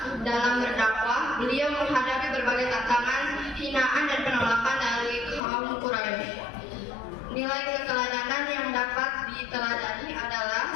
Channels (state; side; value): drops out; right; at 5.4 s